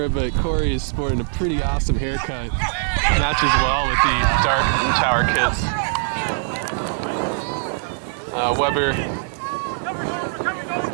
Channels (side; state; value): left; silent; digital silence